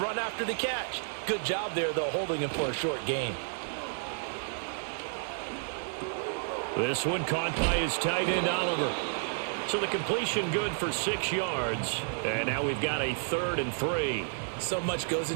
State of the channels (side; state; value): left; silent; 57 dB below the other